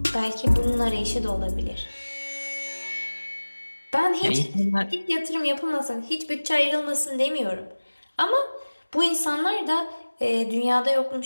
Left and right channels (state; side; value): inverted; both; correlation -1.00